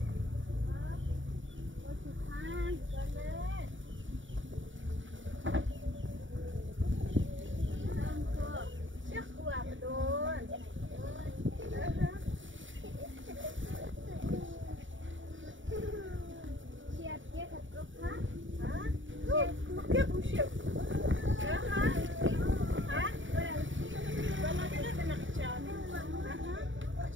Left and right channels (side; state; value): left; late; 0.56 ms